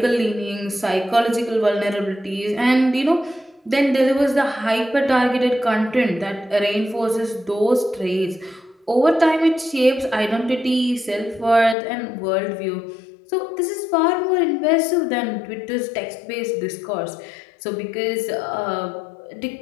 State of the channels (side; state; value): right; drops out; at 11.8 s